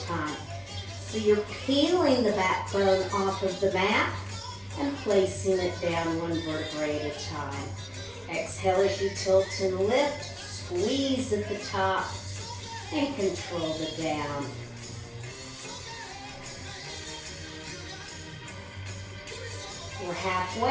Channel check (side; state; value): both; identical; correlation 1.00